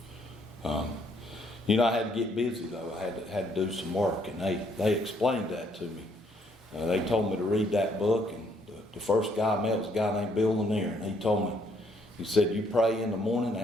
You know, I had to get busy, though. I had to do some work, and they explained that to me. They told me to read that book, and the first guy I met was a guy named Bill Lanier, and he told me, he said, you pray in the morning,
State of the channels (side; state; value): both; normal; correlation 0.68